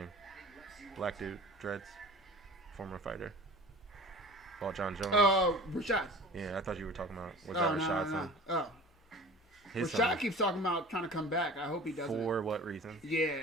Black dude, dreads, former fighter. Oh, John Jones. Rashad. Yeah, I thought you were talking about that Rashad's son? Oh. His Rashad son. keeps talking about trying to come back. I hope he doesn't. For what reason? Yeah,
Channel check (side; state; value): both; normal; correlation 0.41